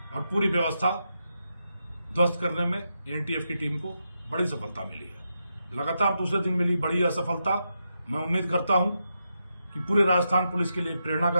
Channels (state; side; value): inverted; both; correlation -0.85